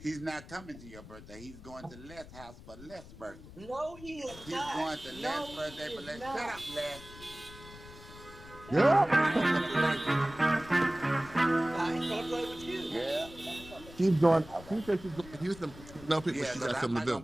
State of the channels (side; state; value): left; noise; rumble, 17 dB below the sound